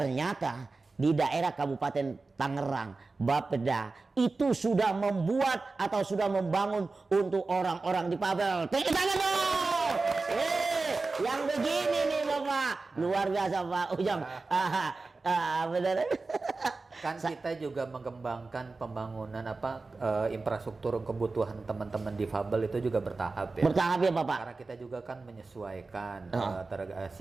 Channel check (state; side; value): quieter; left; 3.7 dB